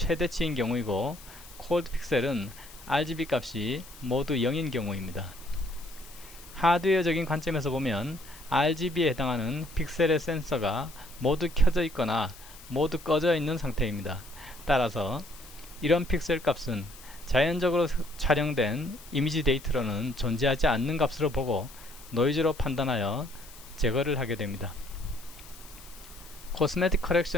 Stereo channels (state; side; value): noise; left; hiss, 19 dB below the sound